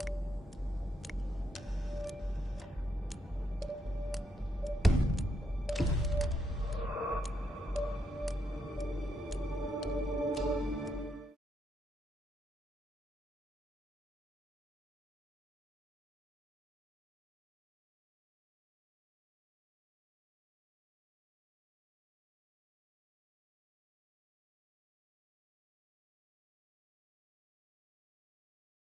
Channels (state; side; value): normal; both; correlation 0.78